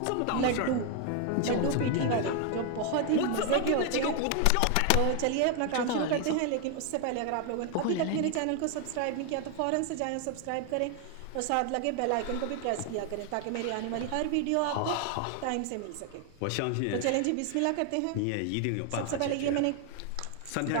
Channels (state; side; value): different; both; correlation 0.00